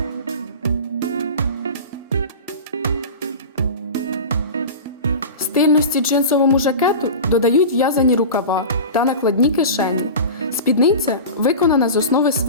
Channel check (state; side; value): inverted; both; correlation -0.31